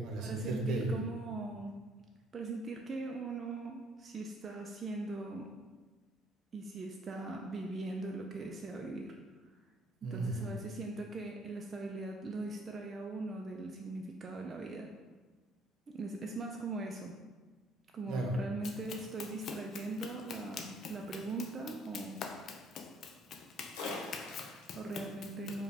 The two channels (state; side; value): normal; both; correlation 0.63